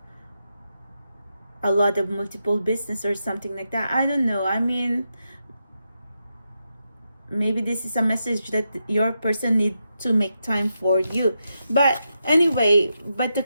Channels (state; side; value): inverted; both; correlation -0.86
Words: a lot of multiple business or something like that. I don't know. I mean, maybe this is a message that your person need to make time for you. But anyway, but the